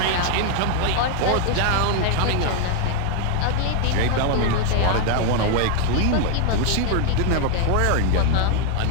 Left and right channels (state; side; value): different; both; correlation 0.01